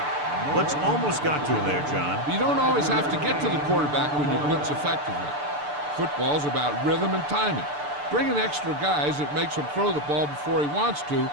Blitz almost got to him there, John. You don't always have to get to the quarterback when you blitz effectively. Football's about rhythm and timing. Bringing extra guys that makes him throw the ball before he wants to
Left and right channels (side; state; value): left; late; 6.8 ms